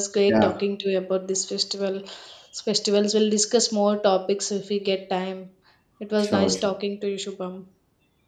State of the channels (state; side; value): identical; both; correlation 1.00